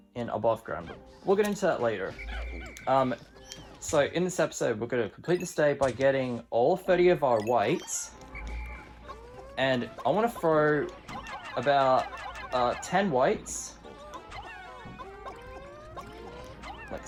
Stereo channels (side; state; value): both; identical; correlation 1.00